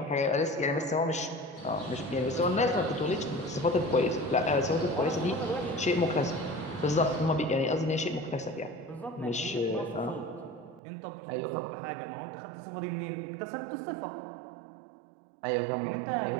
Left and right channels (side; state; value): left; drops out; at 10.8 s